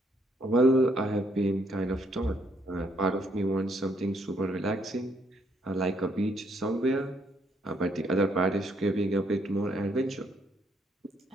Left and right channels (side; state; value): both; normal; correlation 0.71